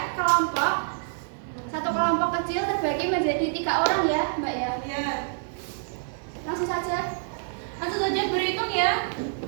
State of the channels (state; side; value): silent; left; digital silence